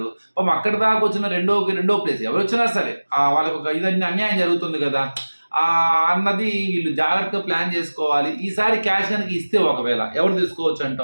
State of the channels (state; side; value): inverted; both; correlation -1.00